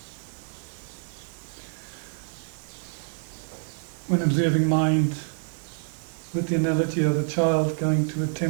When observing mind with the analogy of a child going to a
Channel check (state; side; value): silent; left; digital silence